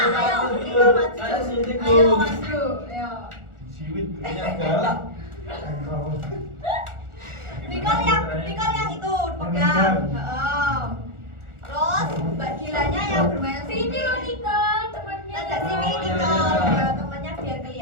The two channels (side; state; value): left; late; 1.4 ms